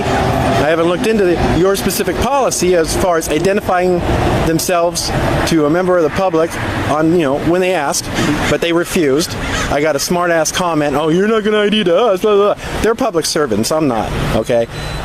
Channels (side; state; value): both; identical; correlation 1.00